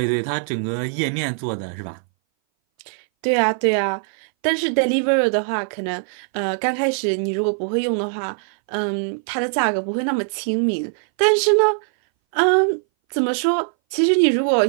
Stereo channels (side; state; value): left; silent; 60 dB below the other